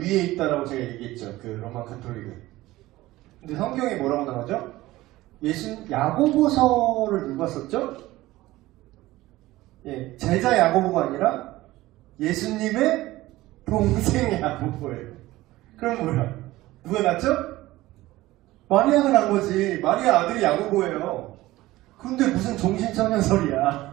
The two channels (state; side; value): quieter; left; 17.5 dB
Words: 있다라고 제가 얘기했죠. 그 로마 카톨릭은. 근데 성경에 뭐라고 나오죠? 야고보서를 누가 썼죠? 예, 제자 야고보가 아니라 예수님의 동생 야고보예요. 그럼 뭐야? 누가 낳죠? 마리아가 낳은 거지. 마리아 아들이 야고보예요. 근데 무슨